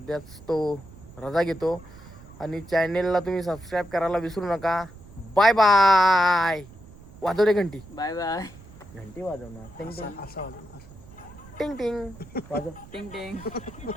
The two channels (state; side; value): noise; right; rumble, 19 dB below the sound